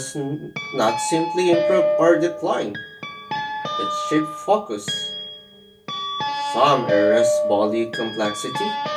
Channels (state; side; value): identical; both; correlation 1.00